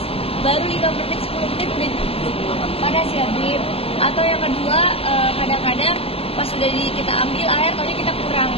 baru 5 menit 10 menit udah panas ya Bib. Atau yang kedua kadang-kadang pas sudah kita ambil air taunya kita kurang,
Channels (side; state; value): right; late; 0.28 ms